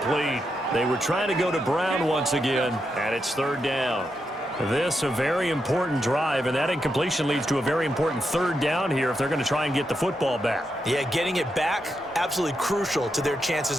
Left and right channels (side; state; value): both; normal; correlation 0.84